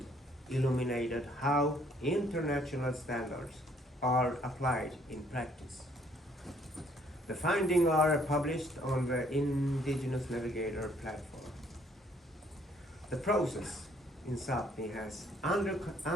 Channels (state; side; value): normal; both; correlation 0.64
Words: illuminated how international standards are applied in practice. The findings are published on the Indigenous Navigator platform. The process in Sápmi has